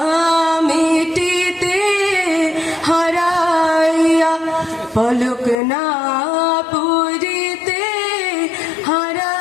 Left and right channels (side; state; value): right; drops out; at 5.6 s